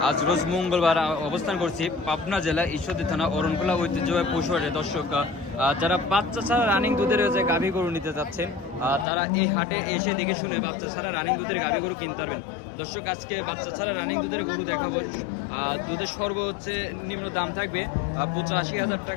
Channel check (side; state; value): right; drops out; at 9.1 s